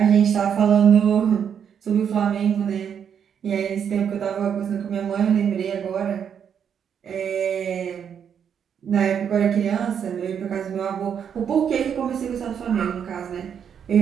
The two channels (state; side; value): quieter; left; 8.0 dB